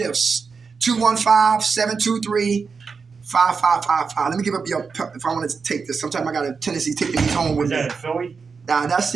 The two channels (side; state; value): left; quieter; 5.2 dB